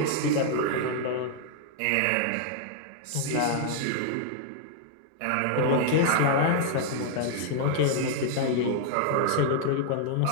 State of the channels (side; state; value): both; different; correlation -0.01